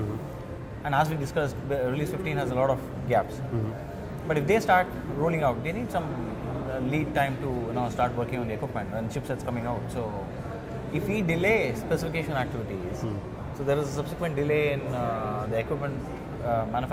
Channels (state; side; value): identical; both; correlation 1.00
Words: And as we discussed, release 15 has a lot of gaps. But if they start rolling out, they need some lead time to start working on the equipment and chipsets coming out. So if we delay specification activities, so there is a subsequent delay in the equipment